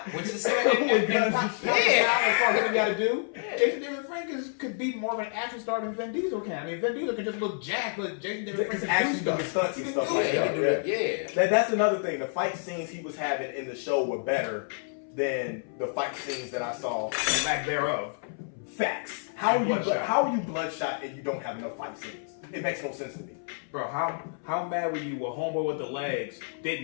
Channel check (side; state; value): right; silent; 59 dB below the other